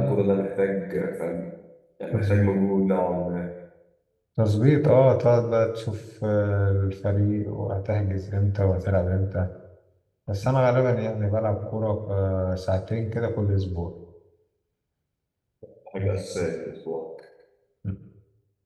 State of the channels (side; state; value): both; identical; correlation 1.00